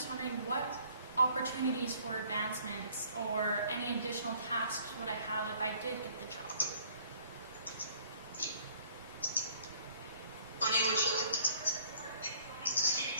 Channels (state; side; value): inverted; both; correlation -0.59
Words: wondering what opportunities for advancements or any additional tasks would I have if I did get the job? Bonnie, would you like to?